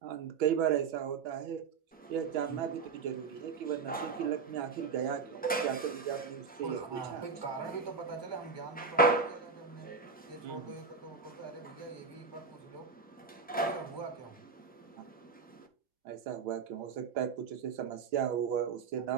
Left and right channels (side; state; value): left; quieter; 5.4 dB